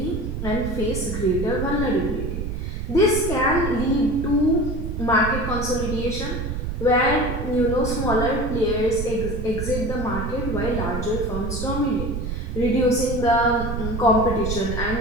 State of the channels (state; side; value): noise; right; rumble, 4 dB below the sound